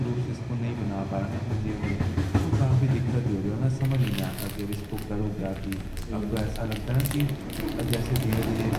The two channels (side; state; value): both; identical; correlation 1.00